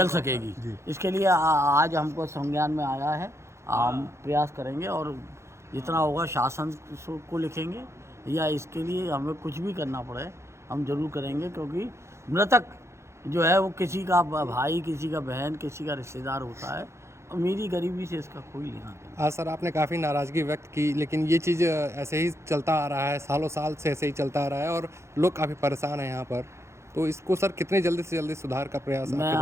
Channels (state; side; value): late; left; 0.13 ms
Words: सकेगी। इसके लिए आज हमको संज्ञान में आया है। हम प्रयास करेंगे और जितना होगा शासन को लिखेंगे, या इसके लिए हमें कुछ भी करना पड़े हम जरूर करेंगे, क्योंकि मृतक जो है वो किसी का भाई, किसी का बहन, किसी का रिश्तेदार होता है। अमीरी गरीबी से इसका कोई लेना देना। हाँ सर, आपने काफ़ी नाराज़गी व्यक्त की, लेकिन ये चीज़ ऐसे ही चलता आ रहा है, सालों साल से ऐसे ही चलता आ रहा है और लोग काफ़ी परेशान हैं यहाँ पर। तो इसको सर कितने जल्दी से जल्दी सुधार का प्रयास आपके द्वारा